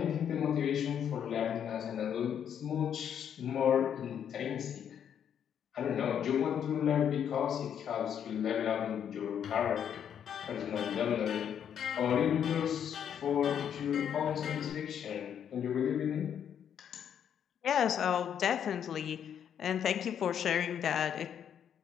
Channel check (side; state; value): right; quieter; 8.8 dB